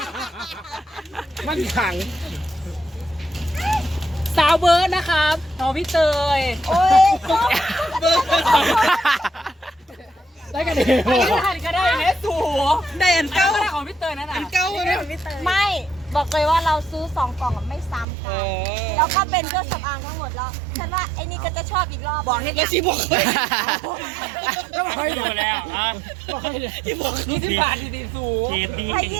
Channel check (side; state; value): left; drops out; at 18.1 s